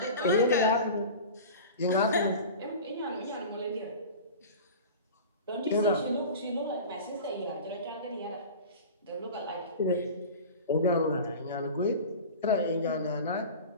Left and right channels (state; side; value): inverted; both; correlation -0.35